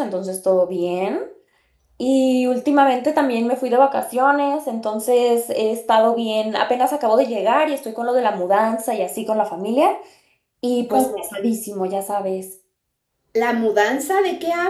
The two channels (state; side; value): identical; both; correlation 1.00